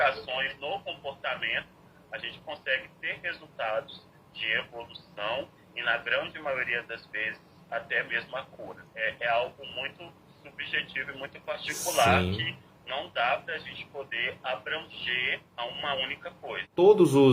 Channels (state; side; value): identical; both; correlation 1.00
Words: no comportamento, a gente consegue ter resultados de evolução e, na grande maioria das vezes, até mesmo a cura. É algo muito subjetivo e muito particular. Sim. Que não dá para a gente poder abranger a uma única coisa. Todos